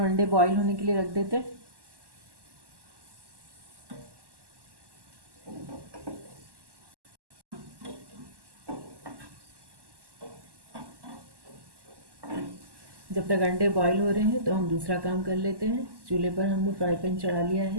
अंडे बॉईल होने के लिए रख देते हैं। जब तक अंडे बॉईल हो रहे हैं तो हम दूसरा काम कर लेते हैं। चूल्हे पर हमने फ्राई पैन चढ़ा लिया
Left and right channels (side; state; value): left; late; 1.1 ms